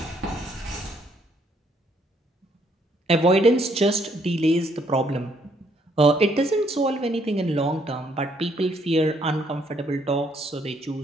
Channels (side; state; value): both; normal; correlation 0.69